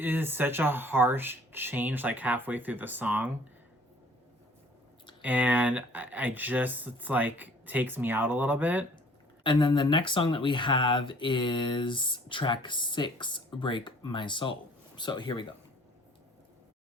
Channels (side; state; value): both; normal; correlation 0.54